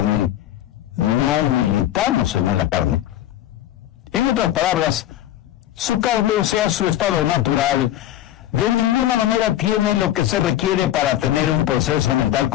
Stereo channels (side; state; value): right; quieter; 12.8 dB